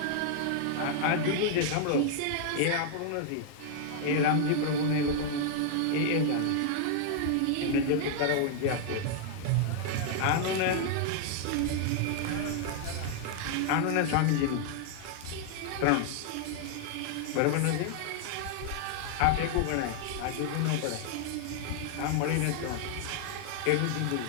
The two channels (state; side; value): different; both; correlation -0.01